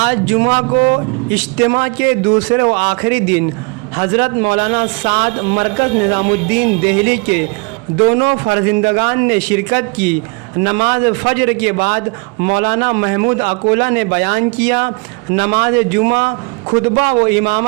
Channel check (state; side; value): quieter; left; 32.0 dB